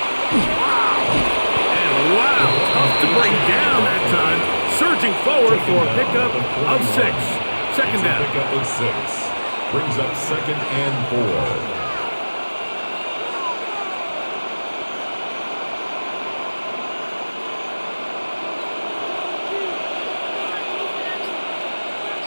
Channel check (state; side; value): inverted; both; correlation -1.00